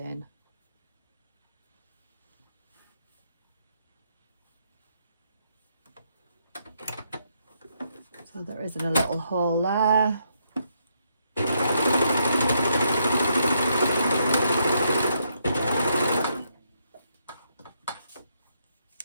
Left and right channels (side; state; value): both; inverted; correlation -0.76